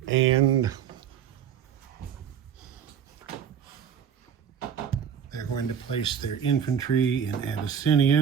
And they're going to place their infantry in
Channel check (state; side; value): quieter; left; 8.3 dB